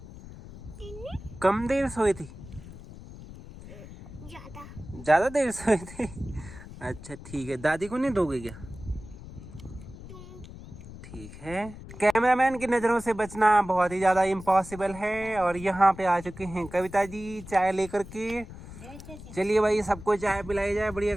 कम देर सोए थे? ज्यादा देर सोए थे? अच्छा ठीक है, दादी को नहीं दोगे क्या? ठीक है। कैमरामैन की नजरों से बचना बहुत ही ज्यादा इम्पॉसिबल है। और यहाँ पे आ चुके हैं कविता जी चाय लेकर के। चलिए भाई, सबको चाय पिलाई जाए बढ़िया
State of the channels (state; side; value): noise; left; rumble, 15 dB below the sound